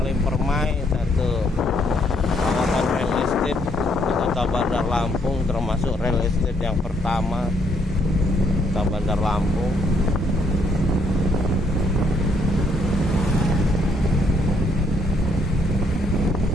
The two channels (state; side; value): normal; both; correlation 0.70